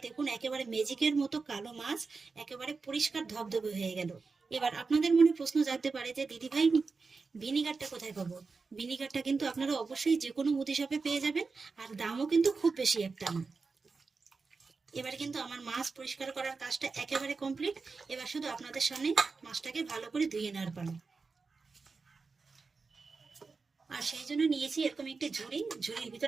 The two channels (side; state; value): left; quieter; 4.4 dB